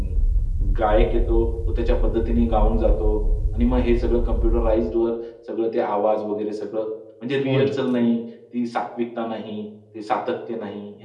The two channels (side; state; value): both; identical; correlation 1.00